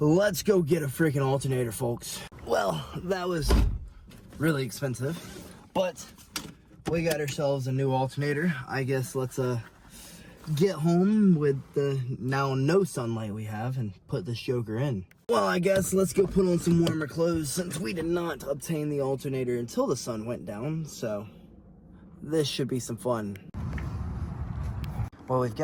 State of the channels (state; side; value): identical; both; correlation 1.00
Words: go get a freaking alternator, folks. Well, that was really expensive, but we got ourselves a new alternator. I guess let's get home with the now no sunlight we have and put this joker in. Well, I guess let's go put on some warmer clothes since we did not obtain the alternator until the sun went down, so this should be some fun. Well, we've